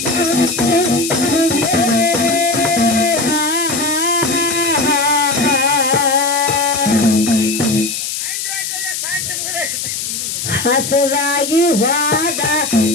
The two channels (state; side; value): noise; left; hiss, 4 dB below the sound